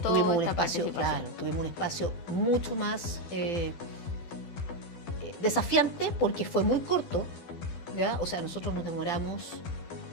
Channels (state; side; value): late; right; 12 ms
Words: tuvimos un espacio mucho más desafiante porque fue muy corto, ¿ya? O sea, nosotros nos